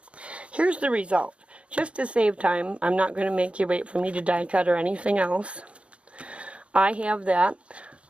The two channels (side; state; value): left; late; 0.060 ms